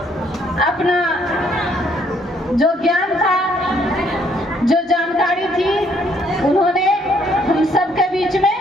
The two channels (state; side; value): normal; both; correlation 0.67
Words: अपना जो ज्ञान था, जो जानकारी थी, उन्होंने हम सबके बीच में